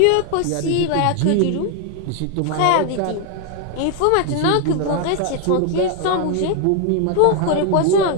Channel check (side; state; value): both; different; correlation 0.00